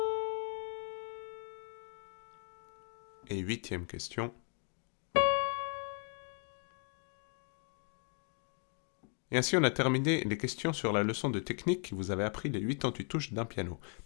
Et huitième question. Et ainsi on a terminé les questions sur la leçon de technique qui vous avait appris les 88 touches d'un piano.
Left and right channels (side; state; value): right; quieter; 38.8 dB